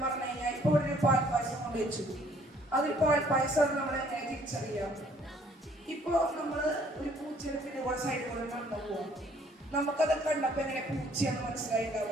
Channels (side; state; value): both; normal; correlation 0.61